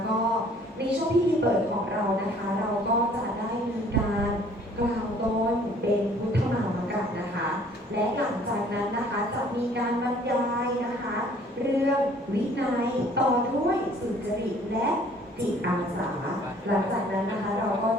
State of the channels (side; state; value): both; normal; correlation 0.56